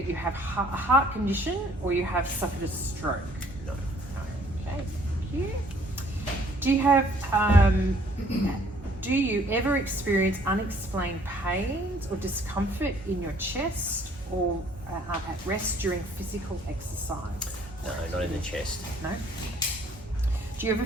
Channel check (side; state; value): both; normal; correlation 0.60